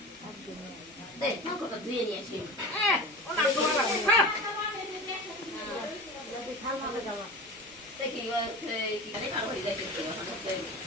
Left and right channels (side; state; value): both; normal; correlation 0.32